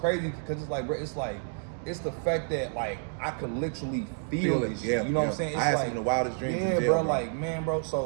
because it's like, bro, it's the fact that like I could literally feel it. Yeah, you know what I'm saying? It's I had like, some of the wildest dreams. Yeah, in jail, bro, like man, bro.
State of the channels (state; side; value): silent; left; digital silence